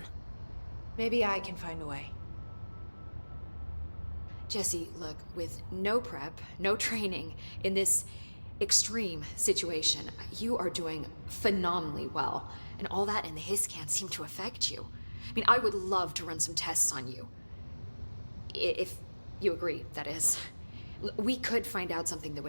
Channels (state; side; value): inverted; both; correlation -1.00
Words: Maybe I can find a way. Jesse, look, with no prep, no training, in this extreme situation, you are doing phenomenally well. And all that and the hiss can't seem to affect you. I mean, I would love to run some tests on you. If you agree, that is. We could find out something that